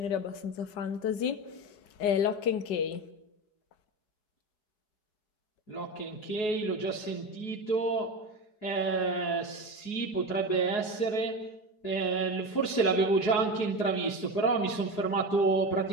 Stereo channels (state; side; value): late; right; 4.7 ms